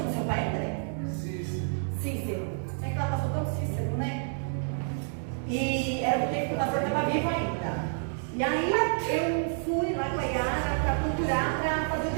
seu pai, André? Cícero. É que ela passou tão Cícero, né? E era do tempo que o pastor estava vivo ainda. E aí eu fui lá com a Yara para procurar para fazer o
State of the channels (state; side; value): silent; left; digital silence